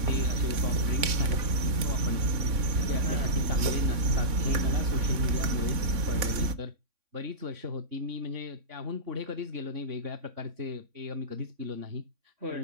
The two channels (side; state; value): left; late; 3.6 ms